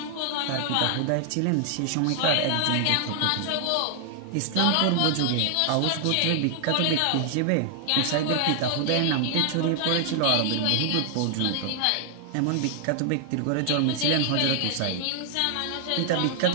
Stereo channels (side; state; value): both; different; correlation 0.00